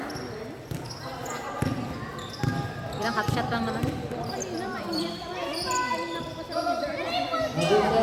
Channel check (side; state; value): both; identical; correlation 1.00